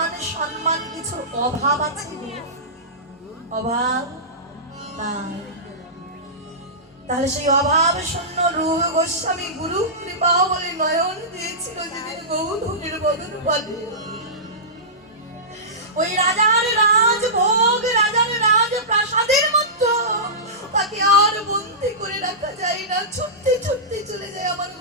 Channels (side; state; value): both; normal; correlation -0.18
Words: সম্মান কিছুর অভাব আছে? অভাব নাই। তাহলে সেই অভাব শূন্য রূপ গোস্বামী গুরু কৃপা বলে নয়ন দিয়েছিল যেদিন গৌরহরির বদন পানে। ওই রাজার রাজভোগ, রাজার রাজ প্রাসাদের মধ্যে তাকে আর বন্দী করে রাখা যায় না, ছুটতে ছুটতে চলে যায় আমার